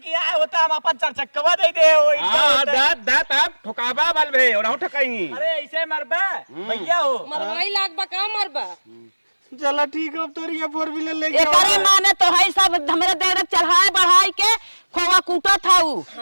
है होता हम अपन चार चक्कवा दे दे ओई हां दात दात अब ठोकाबा बल भे और हम ठकाई अरे ऐसे मरबा भैया हो मरवाई लाग बा का मरबा चला ठीक है अब तो ये 4 व्हीलर लेके एकरे माने तो है सब हमरे देर चढ़ाए बढ़ाई के खोवा कूटा था हम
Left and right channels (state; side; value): inverted; both; correlation -1.00